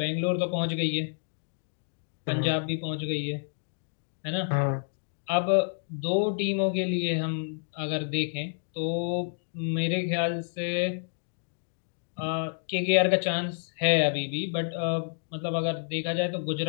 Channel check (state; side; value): silent; right; digital silence